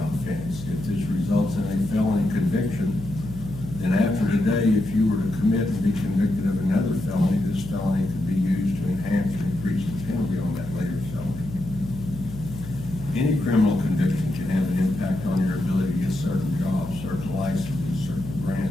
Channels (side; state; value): left; noise; hum, 11 dB below the sound